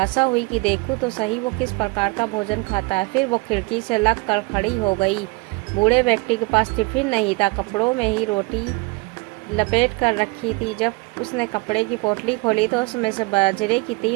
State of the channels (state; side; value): quieter; left; 27.8 dB